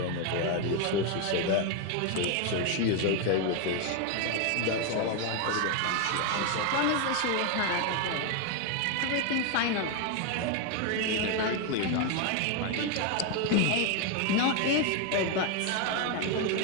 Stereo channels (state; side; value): different; both; correlation 0.01